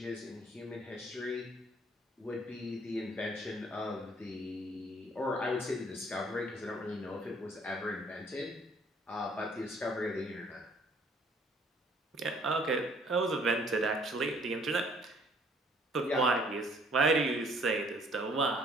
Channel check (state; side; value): normal; both; correlation 0.59